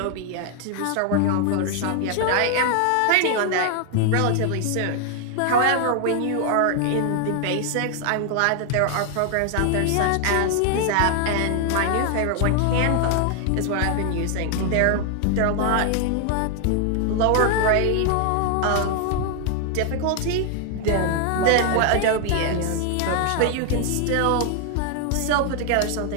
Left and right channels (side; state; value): both; different; correlation 0.00